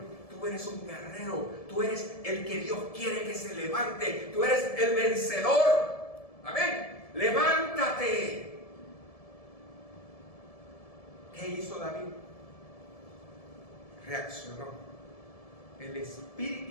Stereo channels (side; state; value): right; late; 1.7 ms